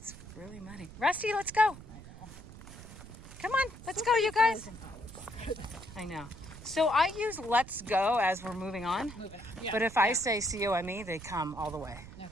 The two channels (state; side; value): noise; right; rumble, 15 dB below the sound